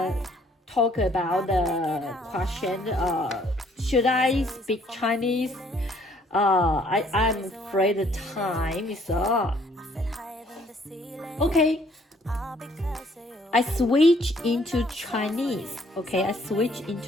talk about the question. Should I speak Chinese? I'm afraid the time is up. Okay, I switch into Chinese. Okay, I switch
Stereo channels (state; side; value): normal; both; correlation 0.63